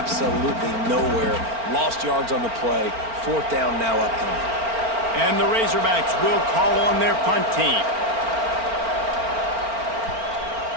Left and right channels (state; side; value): late; left; 4.4 ms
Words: nowhere. Lost yards on the play. Fourth down now upcoming. And the Razorbacks will call on their punt team.